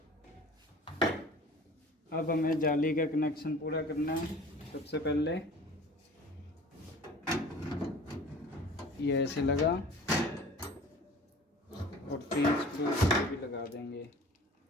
अब हमें जाली का कनेक्शन पूरा करना है। सबसे पहले ये ऐसे लगा और 3 स्क्रू भी लगा देंगे।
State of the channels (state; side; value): normal; both; correlation 0.44